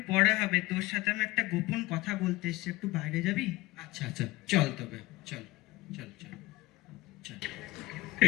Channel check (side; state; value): right; quieter; 19.8 dB